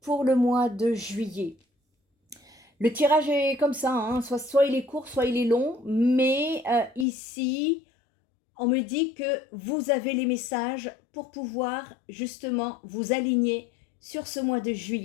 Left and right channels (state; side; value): drops out; right; at 7.1 s